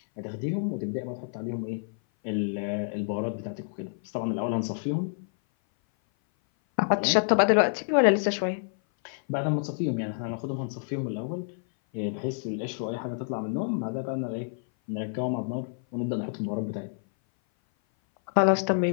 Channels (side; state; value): right; silent; 56 dB below the other